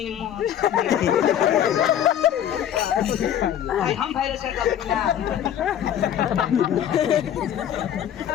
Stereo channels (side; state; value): right; quieter; 10.2 dB